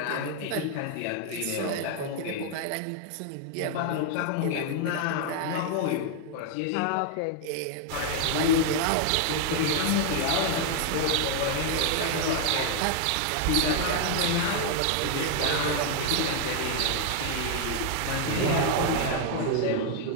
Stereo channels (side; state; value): both; different; correlation 0.00